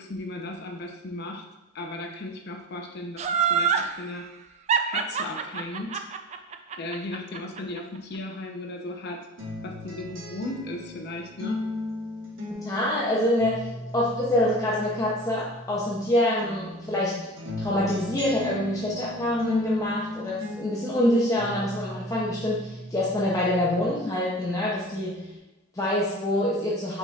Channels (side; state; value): both; normal; correlation 0.40